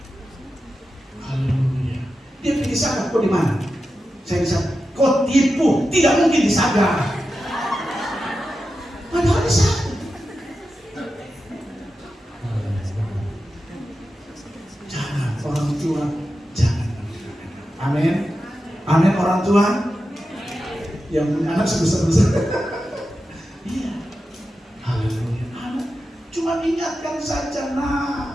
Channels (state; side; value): normal; both; correlation 0.91